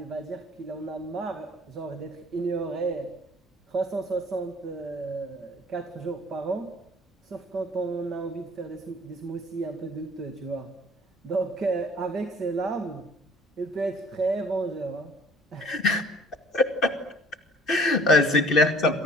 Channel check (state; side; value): normal; both; correlation 0.52